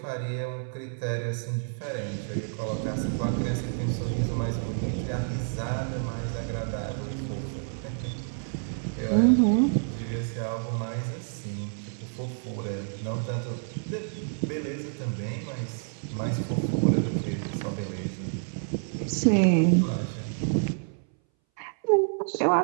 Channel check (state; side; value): silent; left; 59 dB below the other